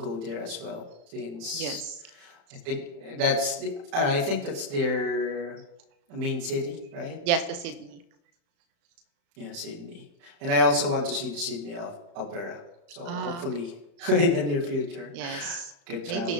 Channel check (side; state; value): left; late; 35 ms